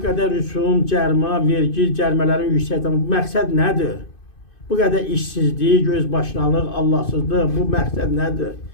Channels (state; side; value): late; right; 2.5 ms